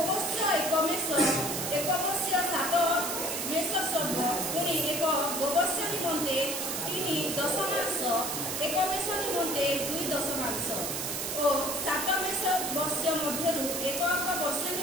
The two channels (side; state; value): right; noise; hiss, 3 dB below the sound